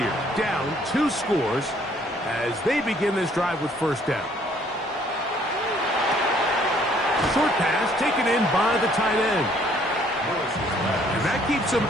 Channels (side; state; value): both; normal; correlation 0.62